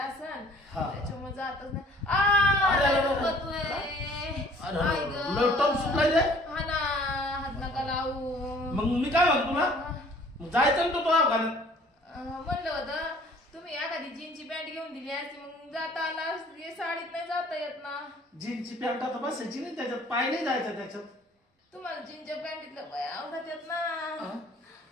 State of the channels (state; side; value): normal; both; correlation 0.54